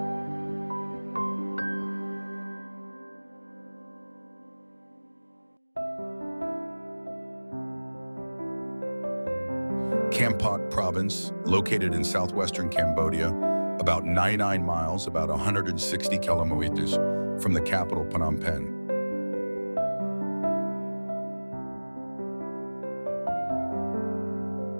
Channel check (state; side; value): inverted; both; correlation -1.00